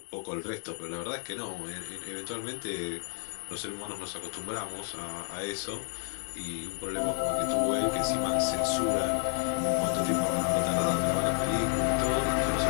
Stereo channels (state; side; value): silent; right; 57 dB below the other